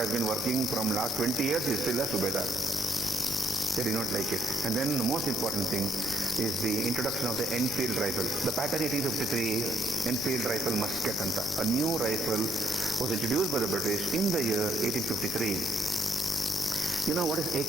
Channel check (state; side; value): normal; both; correlation 0.70